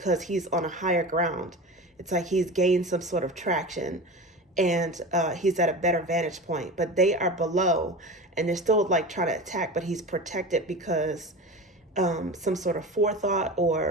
he's on a higher ground. It's like he's gained some sort of traction, and he's at a better vantage point, but they are below and they're still like trying to attack, but he's protected because some sort of forethought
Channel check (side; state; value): both; normal; correlation 0.31